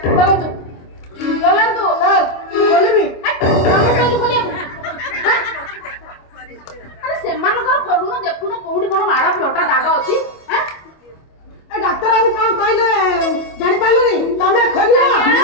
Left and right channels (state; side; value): late; right; 25 ms